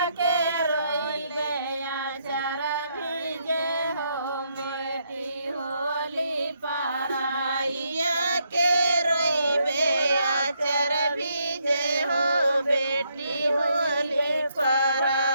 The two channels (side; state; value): both; inverted; correlation -0.75